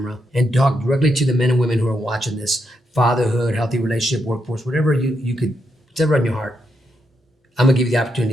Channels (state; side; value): normal; both; correlation 0.81